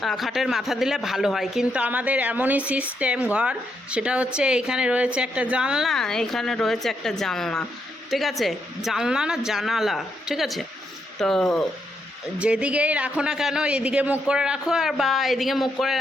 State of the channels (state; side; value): normal; both; correlation 0.79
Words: খাটের মাথা দিলে ভালো হয়, কিন্তু আমাদের এমনই সিস্টেম ঘর, সেটা হচ্ছে এইখানে রয়েছে একটা জানলা, এইখানে রয়েছে একটা জানলা, ঠিক আছে, জানলা না জানালা, ঠিক আছে। তো যেদিকেই রাখো না কেন, এদিকে মুখ করে রাখো আর বা এদিকে মুখ করে